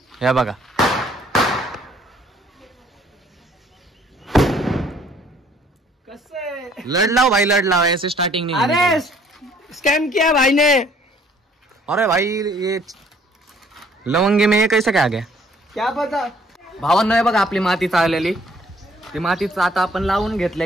हे बघा कसं लड़ लाओ भाई, लड़ लाओ, ऐसे स्टार्टिंग नहीं। अरे स्कैम किया भाई ने। अरे भाई ये लवंगी में ये कैसे काय गया क्या पता। भावांनो, हे बघा आपली माती चाललेली, ती मातीच आता आपण लावून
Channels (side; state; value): both; normal; correlation 0.60